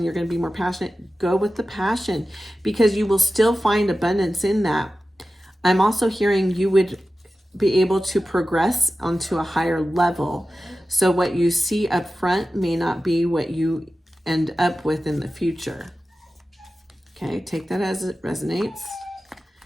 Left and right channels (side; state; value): both; normal; correlation 0.94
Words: you're going to be more passionate, go with the passion, because you will still find abundance in that. I'm also hearing you would be able to progress onto a higher level. So what you see up front may not be what you end up with in the future. Okay, take that as it resonates.